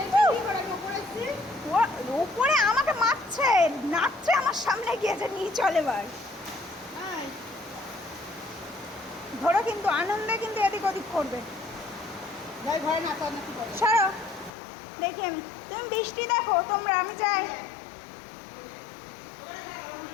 উপরে আমাকে মারছে, নাচছে আমার সামনে গিয়েছে, নিয়ে চলে এবার। ধরো কিন্তু আনন্দে কিন্তু এদিক ওদিক করবে। ছাড়ো, দেখি আমি। তুমি বৃষ্টি দেখো তোমরা, আমি যাই।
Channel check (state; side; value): drops out; right; at 14.5 s